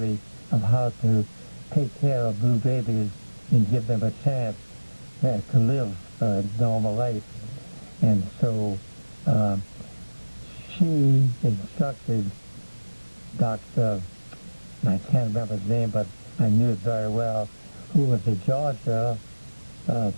of how to take care of blue babies and give them a chance to live a normal life. And so she instructed Dr. I can't remember his name, but I knew it very well, who was a Georgia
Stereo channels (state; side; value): inverted; both; correlation -1.00